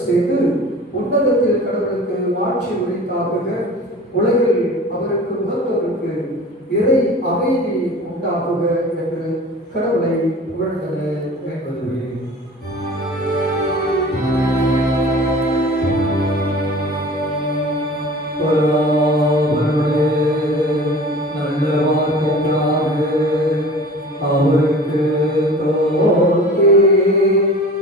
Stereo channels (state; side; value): normal; both; correlation 0.41